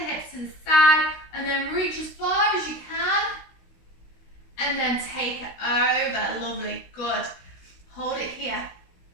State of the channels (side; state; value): right; late; 16 ms